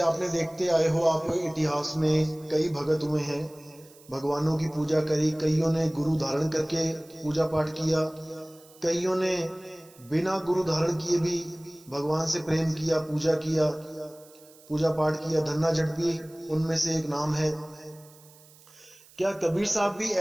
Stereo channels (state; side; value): noise; right; hiss, 25 dB below the sound